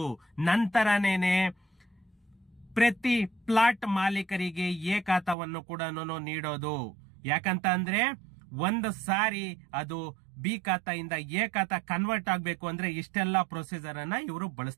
ನಂತರನೇನೆ ಪ್ರತಿ ಪ್ಲಾಟ್ ಮಾಲೀಕರಿಗೆ ಎ ಖಾತಾವನ್ನು ಕೂಡ ನೀಡೋದು. ಯಾಕಂತ ಅಂದ್ರೆ ಒಂದು ಸಾರಿ ಅದು ಬಿ ಖಾತೆಯಿಂದ ಎ ಖಾತಾ ಕನ್ವರ್ಟ್ ಆಗ್ಬೇಕು ಅಂದ್ರೆ ಇಷ್ಟೆಲ್ಲ ಪ್ರೊಸೀಜರ್ ಅನ್ನ ಇವರು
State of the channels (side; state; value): left; drops out; at 5.4 s